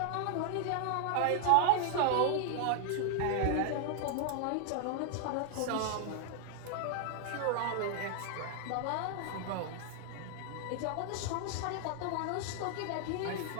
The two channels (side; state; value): both; different; correlation 0.00